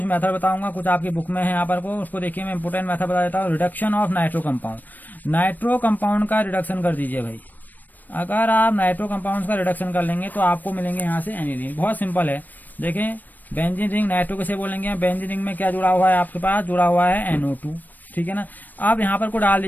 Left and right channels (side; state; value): right; late; 0.087 ms